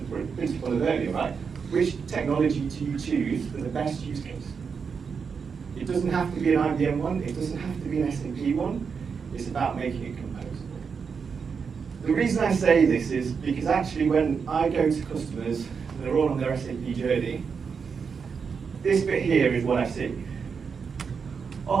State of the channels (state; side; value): quieter; left; 5.9 dB